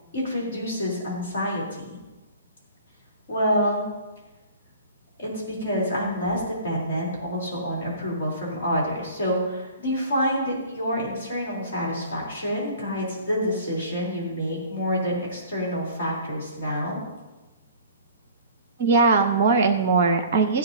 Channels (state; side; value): inverted; both; correlation -0.45